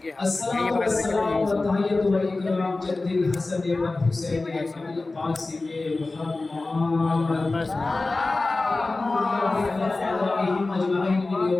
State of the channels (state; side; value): quieter; right; 3.3 dB